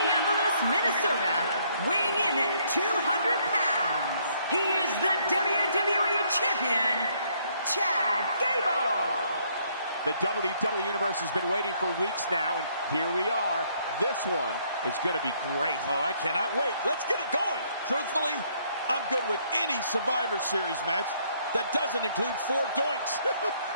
Minnesota, weighing in at 200 pounds. He is the WWE Champion, Chad Gable. The WWE Universe has been waiting for weeks now, and here we are. This one is going to be great. Oh, I cannot wait. Let's get it going. Truthfully, I'm good with any Survivor Series match that doesn't include 4 doinks.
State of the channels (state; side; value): inverted; both; correlation -0.68